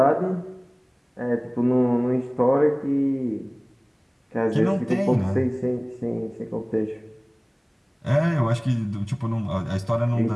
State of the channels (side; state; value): both; identical; correlation 1.00